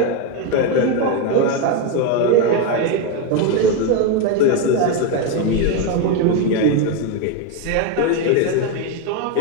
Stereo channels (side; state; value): both; different; correlation 0.03